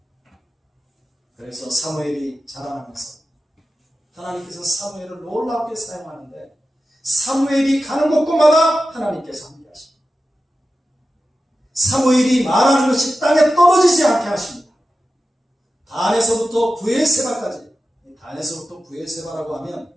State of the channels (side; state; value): both; normal; correlation 0.93